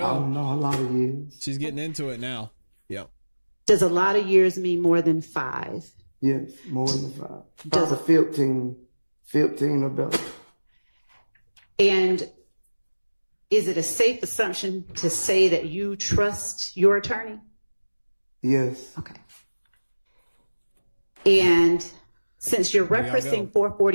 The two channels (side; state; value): both; inverted; correlation -1.00